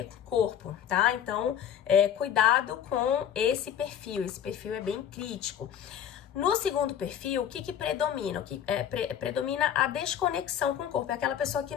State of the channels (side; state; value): right; quieter; 9.5 dB